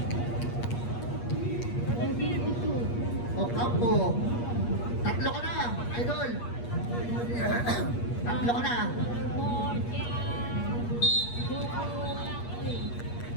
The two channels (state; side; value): late; right; 8.4 ms